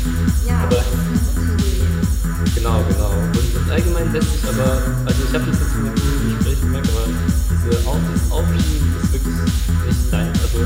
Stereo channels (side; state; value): both; identical; correlation 1.00